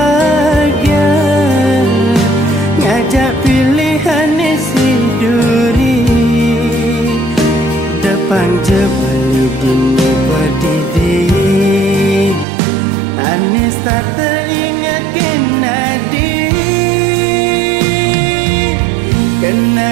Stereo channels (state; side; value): drops out; left; at 12.5 s